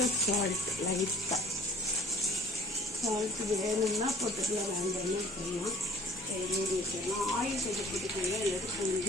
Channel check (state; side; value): normal; both; correlation 0.52